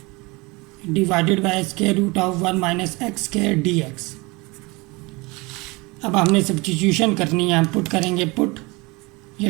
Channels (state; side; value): quieter; left; 25.1 dB